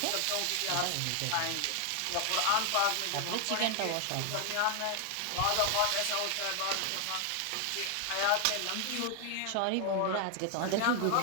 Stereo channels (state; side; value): different; both; correlation 0.00